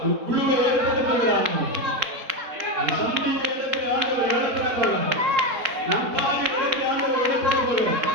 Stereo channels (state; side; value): late; left; 3.8 ms